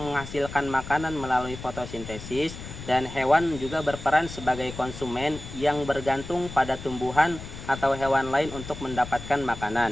menghasilkan makanan melalui fotosintesis, dan hewan juga berperan sebagai konsumen yang bergantung pada tumbuhan atau hewan lain untuk mendapatkan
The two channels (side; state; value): left; noise; rumble, 12 dB below the sound